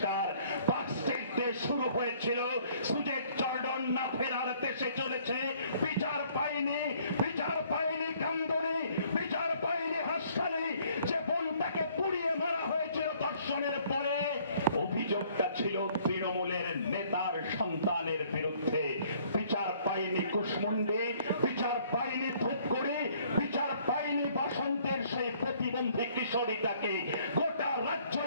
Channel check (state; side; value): inverted; both; correlation -0.61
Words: পার্ক স্ট্রিট দিয়ে শুরু হয়েছিল, সুজেট জর্ডন না ফেরার দেশে চলেছে। বিচার পায়নি কান্দনি, বিচার পায়নি হাসখালি। যে বোনটাকে পুড়িয়ে মারা হয়েছিল ধর্ষণের পরে, অভিযোগটা ছিল তৃণমূলের নেতার সন্তানের বিরুদ্ধে। বিচার পায়নি কুশমুন্ডি, বিচার পায়নি ধূপগুড়ি, বিচার পায়নি বাসন্তের সেই প্রতিবন্ধী কিশোরীটাকে। গোটা রাজ্য